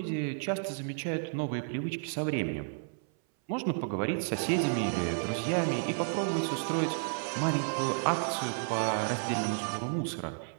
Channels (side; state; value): left; silent; 57 dB below the other